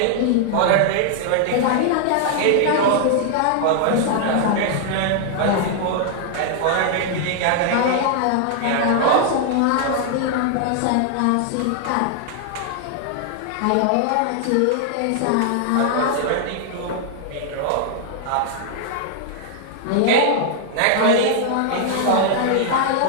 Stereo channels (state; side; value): different; both; correlation 0.00